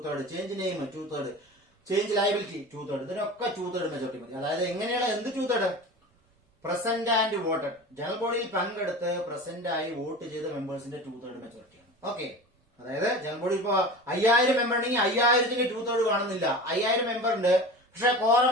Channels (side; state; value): both; normal; correlation 0.34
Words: change name 2/3, change liability 2/3, ഇതിനൊക്കെ 2/3 മെജോറിറ്റി മതി. അതായത് എങ്ങനെയാണ് എന്ത് 2/3? പ്രസന്റ് ആൻഡ് വോട്ടഡ്, ജനറൽ ബോഡിയിൽ പങ്കെടുത്ത് പ്രസന്റ് ആയി വോട്ട് ചെയ്ത മെമ്പേഴ്സിന്റെ 2/3 മെജോറിറ്റിയാണ്. ഓക്കെ, അതായത് ജനറൽ ബോഡി ഇപ്പൊ 5000 മെമ്പർ ഉണ്ടെങ്കിൽ 5000ന്റെ 2/3 കാണുന്നില്ല. 5000 മെമ്പർ ഉണ്ട്, പക്ഷെ കോറം